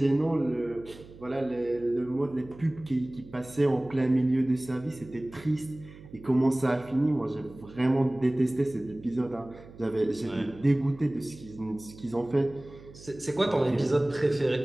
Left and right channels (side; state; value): right; noise; hum, 19 dB below the sound